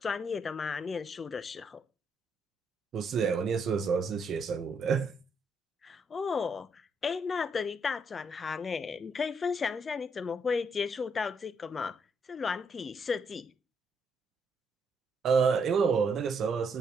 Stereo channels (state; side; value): normal; both; correlation 0.75